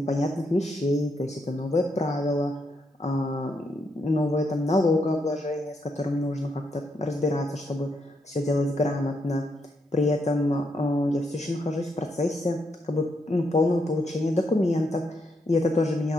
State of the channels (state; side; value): normal; both; correlation 0.79